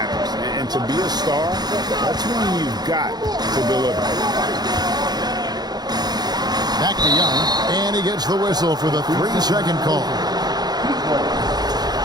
And to be a star, that's when you've got to deliver. Back to Young, and he gets the whistle for the 3-second call.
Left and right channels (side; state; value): left; late; 0.20 ms